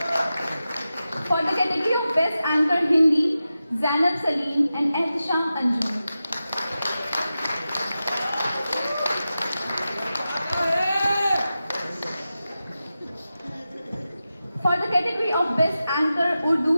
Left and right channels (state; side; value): inverted; both; correlation -0.93